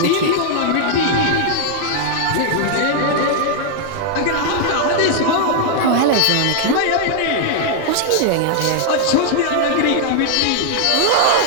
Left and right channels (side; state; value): both; different; correlation 0.00